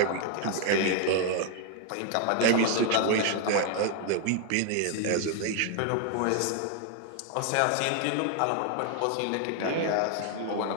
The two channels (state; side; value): different; both; correlation 0.00